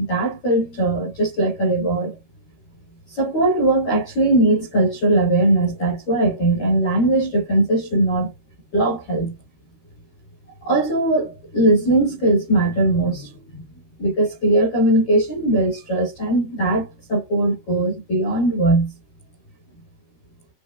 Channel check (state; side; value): late; right; 13 ms